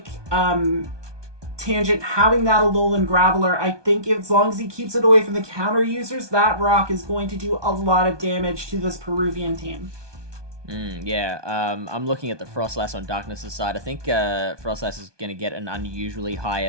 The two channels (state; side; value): late; left; 1.2 ms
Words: Tangent having that Alolan Graveler. I think as long as he keeps it away from the counter users, that rock is going to do a lot of damage to this Peruvian team. I'm looking at the Frostlass on Darkness' side. I think Frostlass is going to get an unusually high